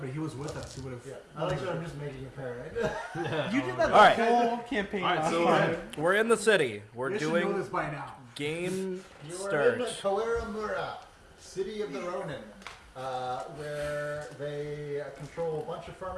he was with us. He would have. Yeah. I like that I'm just making a paranoid. You did that All right. the whole campaign All right, last so time. We're in the city. We're You should know doing this by now. game You are in the start. Koeru Mura, city of the Ronin, where they control a bunch of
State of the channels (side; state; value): both; identical; correlation 1.00